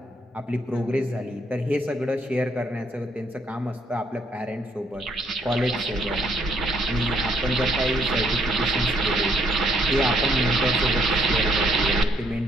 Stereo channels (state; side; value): normal; both; correlation 0.70